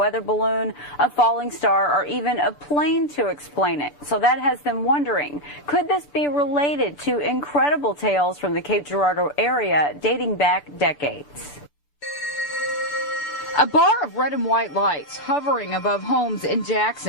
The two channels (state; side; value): late; right; 6.9 ms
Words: balloon, a falling star, or even a plane to explain it. So that has them wondering, could this be related to incredible tales from the Cape Girardeau area dating back decades? A bar of red and white lights hovering above homes in